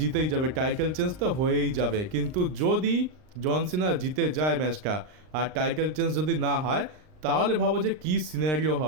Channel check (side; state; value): left; late; 39 ms